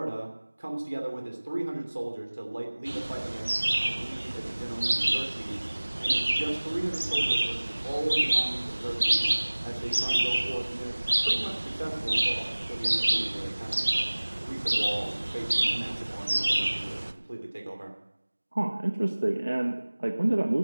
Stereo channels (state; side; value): inverted; both; correlation -1.00